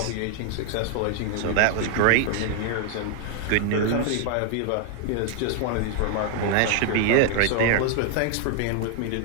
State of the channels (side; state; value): both; different; correlation 0.00